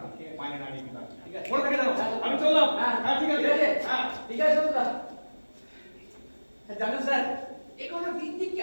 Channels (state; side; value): inverted; both; correlation -1.00